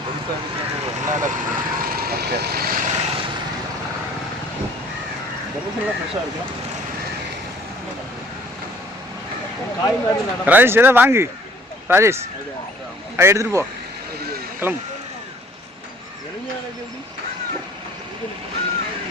ஃப்ரெஷ்ஷாக இருக்கும் காய் மாதிரி ராஜேஷ் எதாவது வாங்கு. ராஜேஷ் அதை எடுத்துகிட்டு போ கிளம்பு.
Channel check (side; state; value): both; normal; correlation 0.55